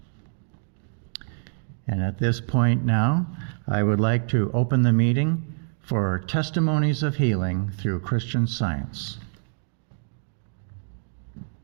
And at this point now, I would like to open the meeting for Testimonies of Healing through Christian Science.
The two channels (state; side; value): silent; left; 61 dB below the other